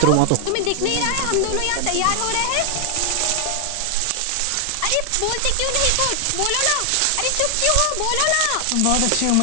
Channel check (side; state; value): both; different; correlation 0.00